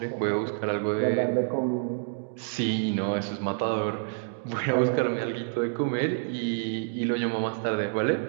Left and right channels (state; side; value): silent; left; digital silence